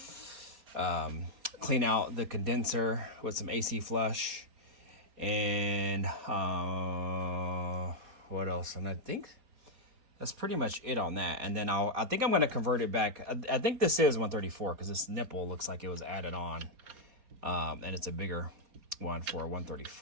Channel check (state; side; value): late; left; 4.3 ms